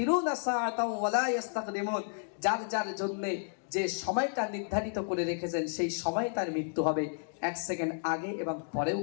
সাআতাও ওয়ালা ইস্তাকদিমুন, যার যার জন্য যে সময়টা নির্ধারিত করে রেখেছেন সেই সময় তার মৃত্যু হবে, 1 সেকেন্ড আগে এবং পরেও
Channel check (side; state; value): right; silent; digital silence